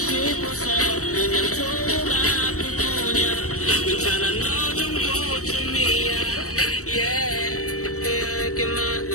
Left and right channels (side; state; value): right; late; 0.65 ms